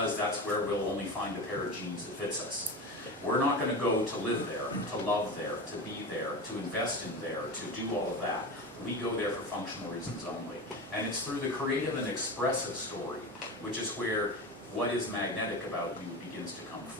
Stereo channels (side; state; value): both; normal; correlation 0.26